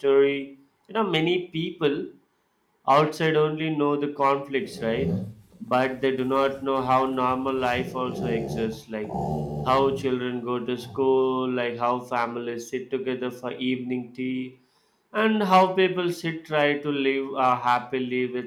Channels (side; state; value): both; identical; correlation 1.00